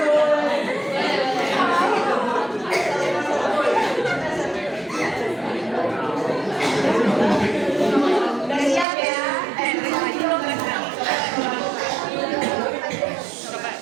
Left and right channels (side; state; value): left; drops out; at 8.8 s